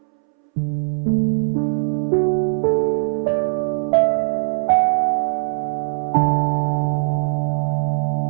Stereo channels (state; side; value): silent; left; 66 dB below the other